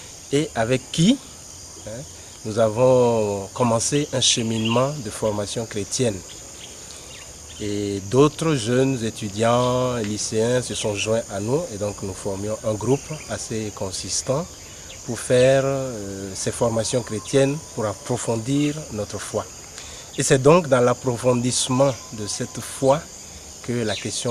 et avec qui nous avons commencé un cheminement de formation chrétienne. Et d'autres jeunes étudiants, lycéens se sont joints à nous et donc nous formions un groupe assez consistant pour faire ces formations chrétiennes, pour approfondir notre foi. Et c'est donc dans l'approfondissement de cette foi que la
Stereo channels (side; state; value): both; identical; correlation 1.00